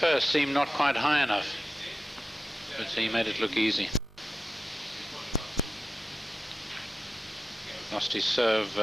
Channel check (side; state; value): both; normal; correlation 0.92